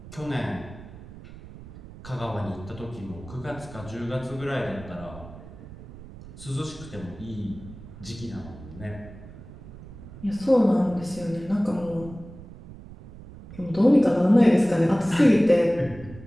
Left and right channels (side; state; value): right; noise; rumble, 16 dB below the sound